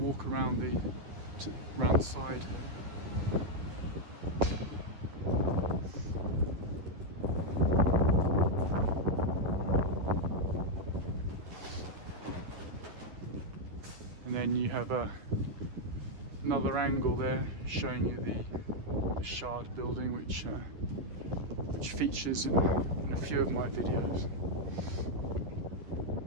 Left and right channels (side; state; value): left; late; 10 ms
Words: around around the side here. And then you have another angle there showing you the Shard building, which features in a few of my videos.